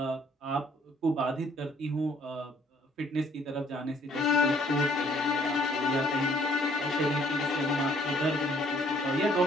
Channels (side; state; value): both; normal; correlation 0.63